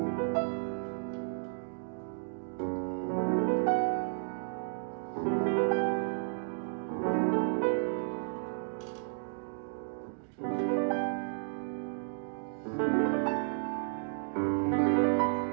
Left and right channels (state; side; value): silent; left; digital silence